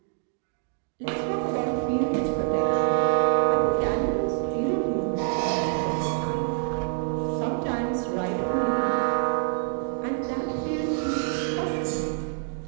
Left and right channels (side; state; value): left; silent; digital silence